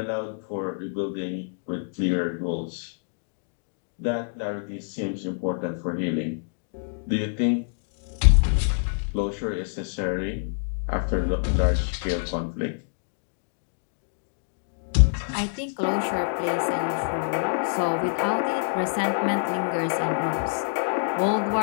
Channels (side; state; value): right; silent; digital silence